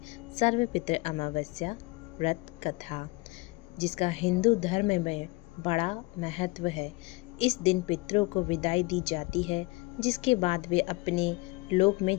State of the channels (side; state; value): right; quieter; 23.7 dB